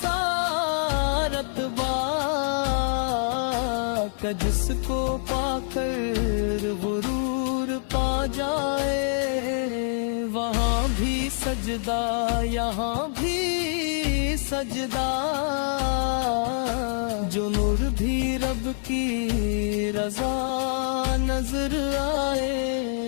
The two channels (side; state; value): right; silent; 61 dB below the other